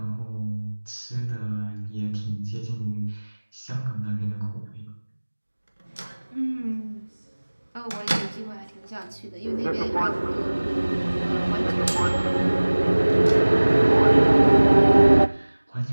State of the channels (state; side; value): inverted; both; correlation -1.00